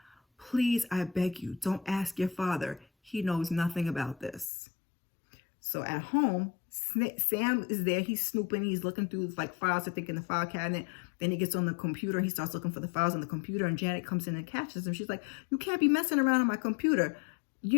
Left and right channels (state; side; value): drops out; right; at 4.5 s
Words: Please, I beg you, don't ask your father. He knows nothing about this. So at home, Sam is there. He's snooping. He's looking through files, I think, in the file cabinet. Then he gets on the computer. He starts looking for the files on the computer. And Janet comes in and catches him. She's like, you can't be messing around on my computer.